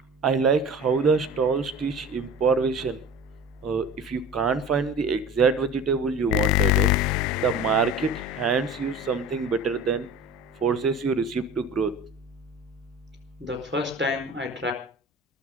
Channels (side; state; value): both; normal; correlation 0.37